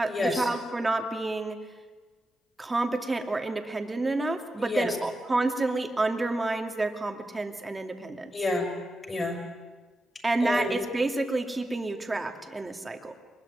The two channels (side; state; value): both; normal; correlation 0.89